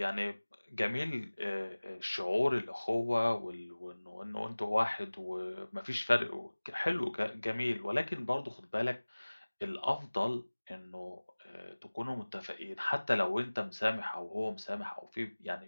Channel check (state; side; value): inverted; both; correlation -1.00